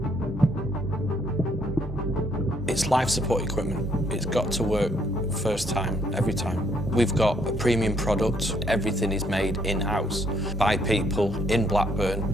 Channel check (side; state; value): both; normal; correlation 0.69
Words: It's life support equipment. It's got to work first time, every time. We've got a premium product. Everything is made in-house by people in Blackburn,